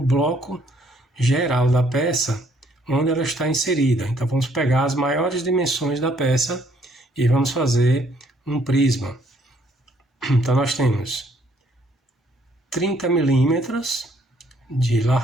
geral da peça onde ela está inserida. Então, vamos pegar as maiores dimensões da peça e vamos fazer um prisma. Então, nós temos 30 milímetros de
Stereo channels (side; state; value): both; normal; correlation 0.66